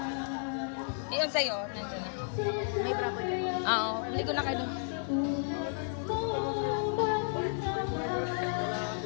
Iyon sa'yo, nandiyan na. Oo, hindi ko na kayo.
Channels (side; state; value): right; silent; digital silence